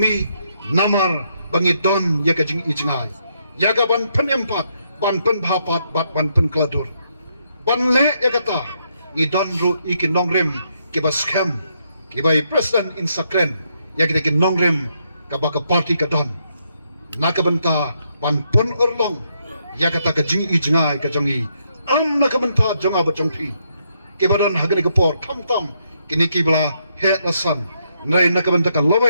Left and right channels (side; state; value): both; inverted; correlation -0.77